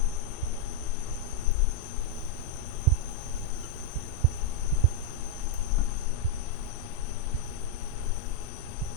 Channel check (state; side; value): different; both; correlation -0.02